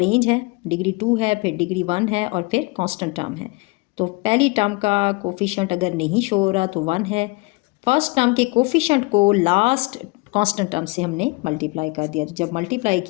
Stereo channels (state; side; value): quieter; right; 25.9 dB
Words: है, डिग्री 2 है, फिर डिग्री 1 है और फिर कांस्टेंट टर्म है। तो पहली टर्म का कोफिशिएंट अगर नहीं शो हो रहा तो 1 है। फर्स्ट टर्म के कोफिशिएंट को लास्ट कांस्टेंट टर्म से हमने मल्टीप्लाई कर दिया। तो जब मल्टीप्लाई